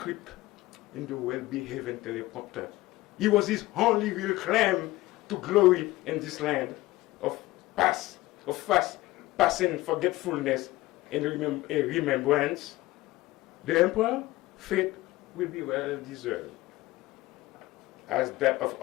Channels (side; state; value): right; quieter; 18.5 dB